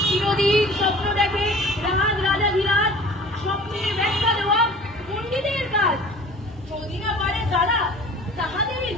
চিরদিন স্বপ্ন দেখে রাজ রাজাধিরাজ স্বপ্নের ব্যাখ্যা দেওয়া পণ্ডিতের কাজ। যদি না পারে তারা তাহাদেরই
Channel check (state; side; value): normal; both; correlation 0.45